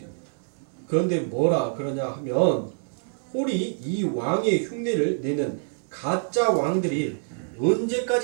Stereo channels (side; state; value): left; silent; 61 dB below the other